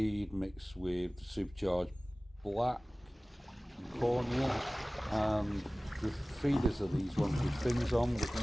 mixed with supercharged black and cornea, and the feeders are these ones with fins on,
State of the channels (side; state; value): both; normal; correlation 0.98